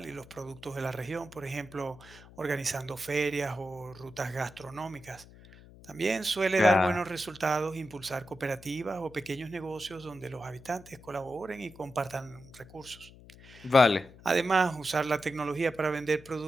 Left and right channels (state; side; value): noise; left; hum, 21 dB below the sound